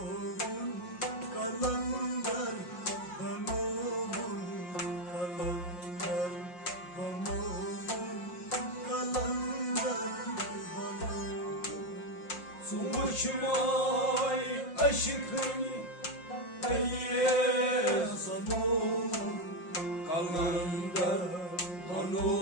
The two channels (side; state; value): right; late; 5.6 ms